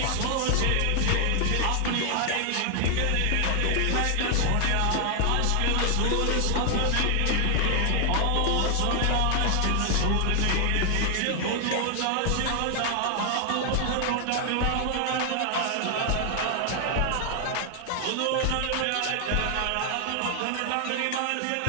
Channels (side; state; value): both; different; correlation 0.00